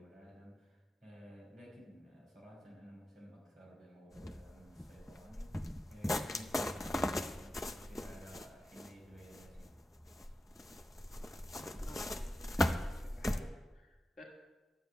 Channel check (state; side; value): normal; both; correlation 0.91